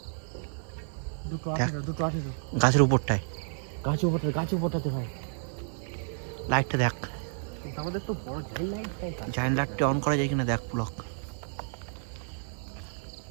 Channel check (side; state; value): left; silent; digital silence